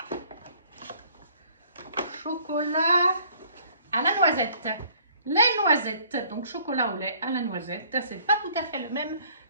chocolat à la noisette. Les noisettes, donc chocolat au lait à la noisette. C'est pas tout à fait le même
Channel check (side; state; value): both; inverted; correlation -0.58